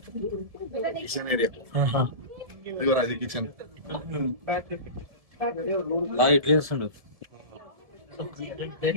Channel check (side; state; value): left; late; 1.7 ms